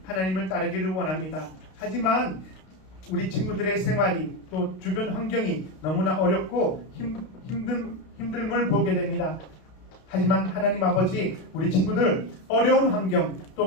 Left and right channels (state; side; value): late; right; 32 ms